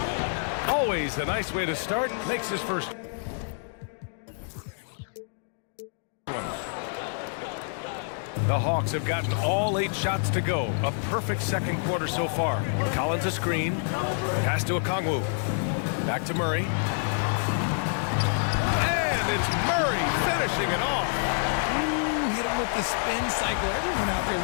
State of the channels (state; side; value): silent; right; digital silence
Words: Always a nice way to start. Makes his first. The Hawks have gotten all 8 shots to go. A perfect second quarter so far. Collins a screen. Pass to Okongwu. Back to Murray. And it's Murray finishing it off. Ooh, hit him with the spin cycle. Everyone out there a